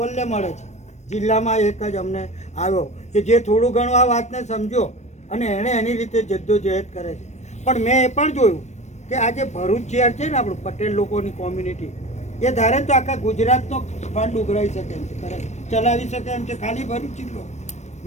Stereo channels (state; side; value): late; right; 0.33 ms